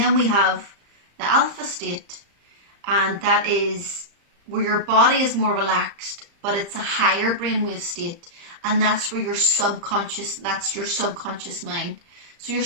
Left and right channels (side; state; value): left; late; 35 ms